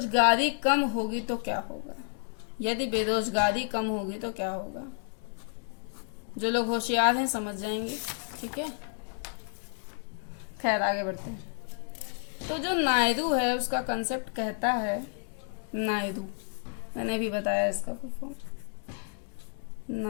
कम होगी तो क्या होगा? यदि बेरोजगारी कम होगी तो क्या होगा। जो लोग होशियार हैं समझ जाएंगे, ठीक है। खैर आगे बढ़ते हैं। तो जो नायडू है उसका कंसेप्ट कहता है, नायडू मैंने भी बताया इसका फुल फॉर्म,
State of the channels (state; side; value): silent; right; 57 dB below the other